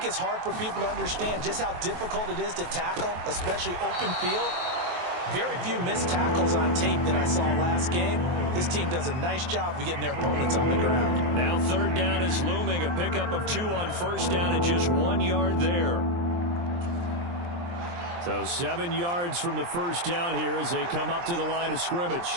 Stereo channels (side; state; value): left; late; 23 ms